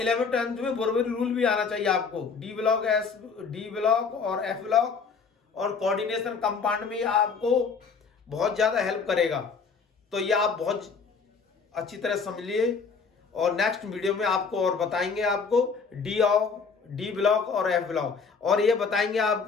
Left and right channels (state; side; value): quieter; right; 5.3 dB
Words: 10th में बोरबरी रूल भी आना चाहिए आपको। डी ब्लॉक और एफ ब्लॉक और कोऑर्डिनेशन कंपाउंड में आपको बहुत ज़्यादा हेल्प करेगा। तो ये आप बहुत अच्छी तरह समझ लिए और नेक्स्ट वीडियो में आपको और बताएंगे आपको डी ब्लॉक और एफ ब्लॉक, और ये बताएंगे